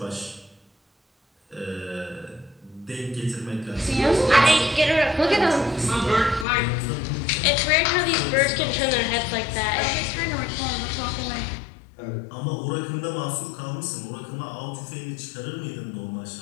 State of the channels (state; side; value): drops out; right; at 6.5 s